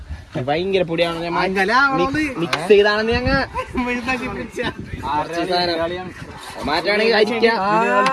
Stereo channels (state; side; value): identical; both; correlation 1.00